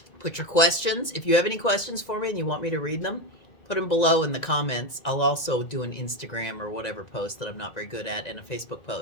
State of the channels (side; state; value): right; late; 1.9 ms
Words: put your questions. If you have any questions for me and you want me to read them, put them below in the comments. I'll also do an Instagram or whatever post that I'm not very good at and a Facebook